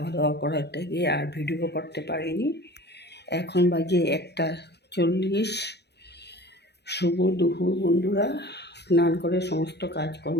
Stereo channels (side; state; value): right; late; 0.49 ms